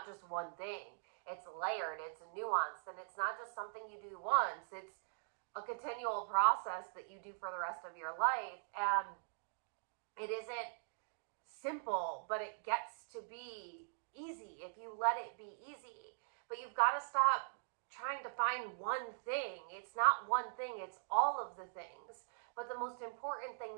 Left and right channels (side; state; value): left; silent; digital silence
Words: just one thing. It's layered, it's nuanced, and it's not just something you do once. It's a continual process that you do for the rest of your life. And it isn't simple, but it gets to be easy if you let it be easy. But you've got to stop trying to find one thing. It's not one thing, it's all of the things. But the most important thing